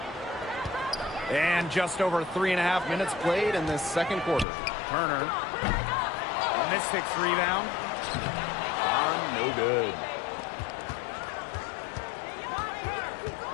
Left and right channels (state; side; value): drops out; right; at 4.5 s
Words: And just over 3.5 minutes played in this second quarter. Turner. The Mystics rebound. No good.